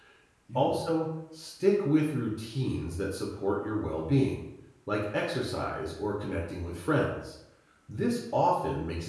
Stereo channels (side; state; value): both; identical; correlation 1.00